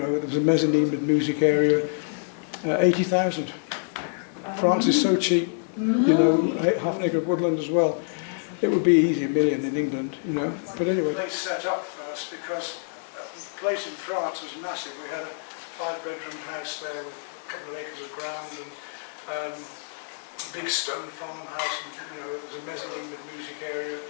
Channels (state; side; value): silent; right; digital silence